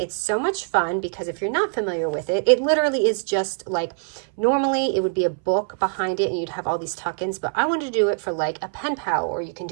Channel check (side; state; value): left; silent; 60 dB below the other